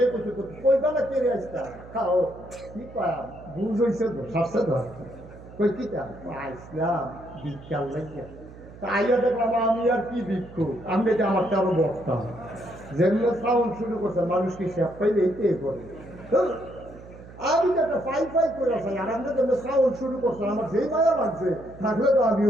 করছে কই বেলা কেড়ে আসতাম খাও কি কয়া বুঝ হয়েছে তো সারছে তো কই কি ইসলাম বিজ্ঞান লাগে। তা আইয়া দেখলাম আমি আর কি ভিক্ষুক, আমি যে আমারটা আরো বসতাম। যেগুলো সাউন্ড শুরু করছে মানুষ কি সে পাইলে এইটাই করে। আমি তো একটা ফাই ফাই করে আসি, আর আমরা যেগুলো সাউন্ড শুরু করছে আমার যেই মায়া লাগছে থাকলে তো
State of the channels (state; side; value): noise; right; hum, 18 dB below the sound